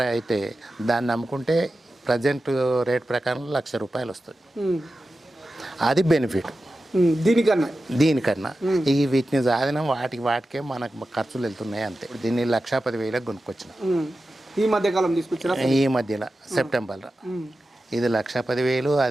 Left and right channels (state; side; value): normal; both; correlation 0.93